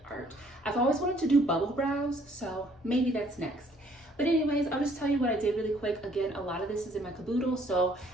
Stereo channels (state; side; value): normal; both; correlation 0.62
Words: art. I've always wanted to do bubble brows, so maybe that's next. But anyways, I'll just tell you what I did really quick. Again, a lot of this is in my caboodle, so